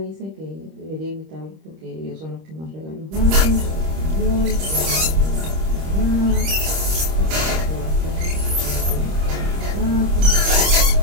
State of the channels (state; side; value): late; left; 26 ms